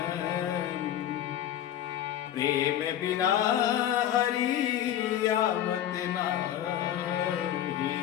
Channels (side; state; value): right; quieter; 11.2 dB